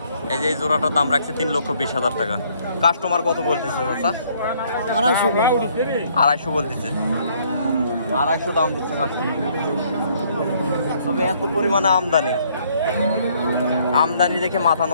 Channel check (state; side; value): inverted; both; correlation -0.65